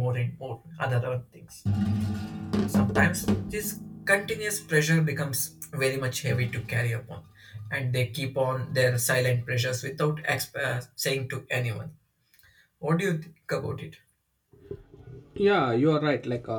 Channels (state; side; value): identical; both; correlation 1.00